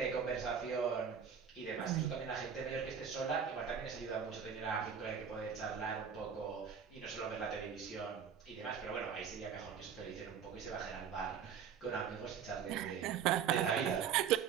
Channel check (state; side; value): quieter; left; 7.4 dB